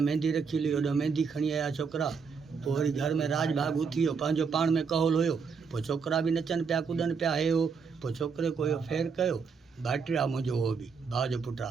मेहंदी रखी हुई, होॾा मेहंदी खणी आया छोकिरा। पोइ वरी घर में राज भाग उथी वियो, पंहिंजो पाण में कहोल हुयो। पोइ छोकिरा बि नचनि पिया कुॾनि पिया, हे हो। पोइ छोकिरे को इहो फेर कयो, भाइटियो आहे मुंहिंजो, उहो बि भाउ जो पुटु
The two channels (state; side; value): quieter; left; 5.5 dB